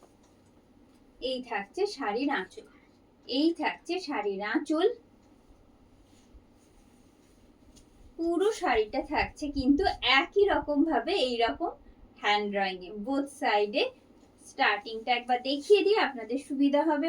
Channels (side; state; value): both; identical; correlation 1.00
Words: এই থাকছে শাড়ির আঁচল, এই থাকছে শাড়ির আঁচল। পুরো শাড়িটা থাকছে কিন্তু একই রকম ভাবে এইরকম হ্যান্ড ড্রয়িং এ বোথ সাইডে। স্টার্টিংটা একবার দেখিয়ে দিই আপনাদের সুবিধা